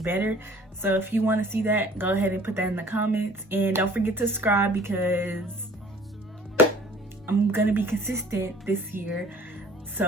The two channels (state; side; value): normal; both; correlation 0.52